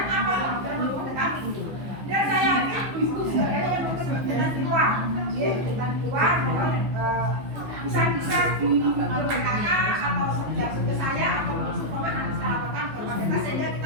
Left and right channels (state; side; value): late; left; 15 ms